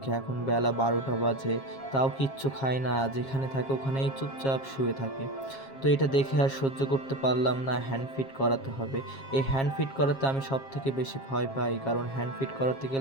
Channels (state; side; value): late; right; 7.4 ms